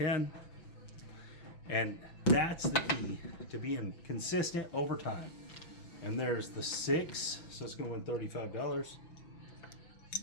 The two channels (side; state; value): right; late; 5.9 ms